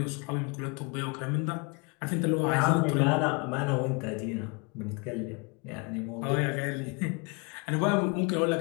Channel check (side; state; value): right; quieter; 31.1 dB